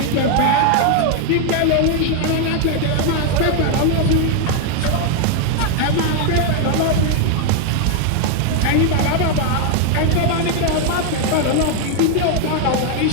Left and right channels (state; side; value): different; both; correlation 0.01